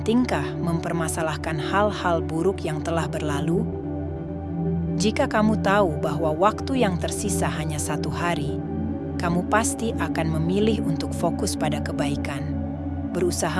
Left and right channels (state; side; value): identical; both; correlation 1.00